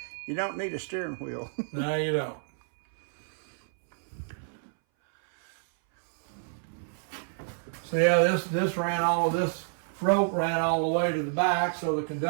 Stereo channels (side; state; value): left; silent; 59 dB below the other